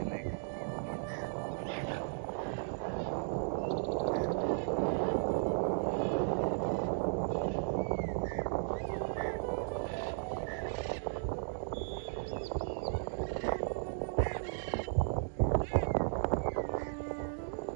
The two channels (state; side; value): silent; left; digital silence